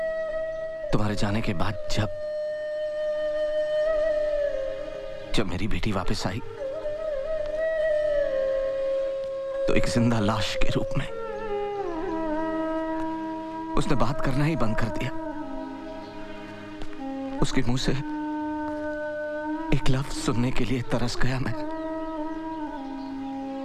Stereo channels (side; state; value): both; identical; correlation 1.00